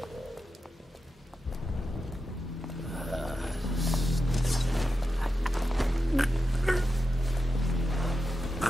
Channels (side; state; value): both; normal; correlation 0.89